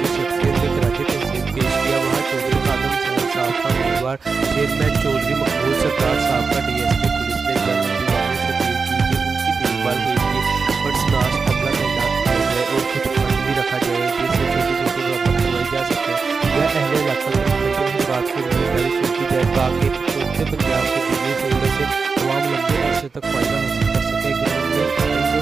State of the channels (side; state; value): left; quieter; 4.8 dB